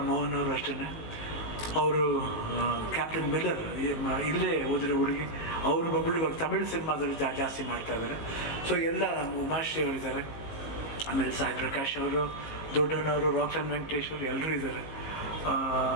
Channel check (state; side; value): late; right; 19 ms